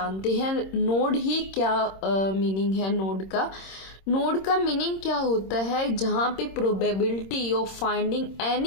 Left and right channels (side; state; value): right; late; 26 ms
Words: हैं। नोड ही क्या मीनिंग है नोड का। नोड का मीनिंग क्या होता है, जहां पे probability of finding